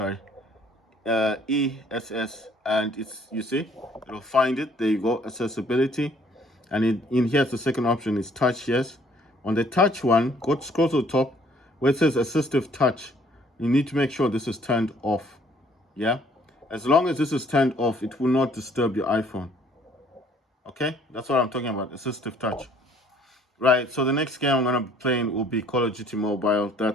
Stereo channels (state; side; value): normal; both; correlation 0.60